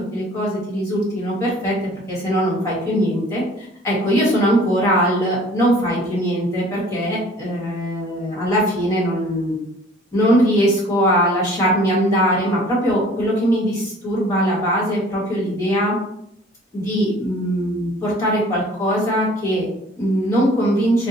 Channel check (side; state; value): both; normal; correlation 0.51